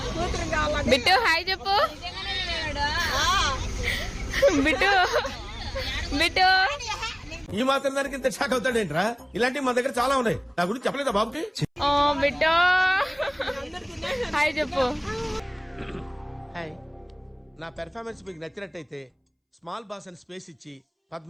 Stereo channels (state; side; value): identical; both; correlation 1.00